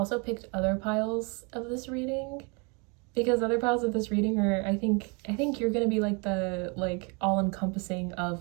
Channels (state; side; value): quieter; left; 32.3 dB